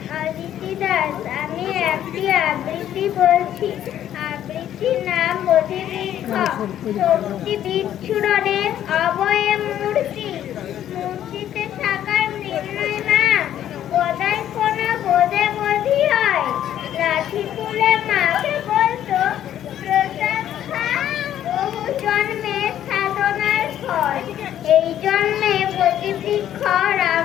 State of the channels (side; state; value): right; quieter; 11.1 dB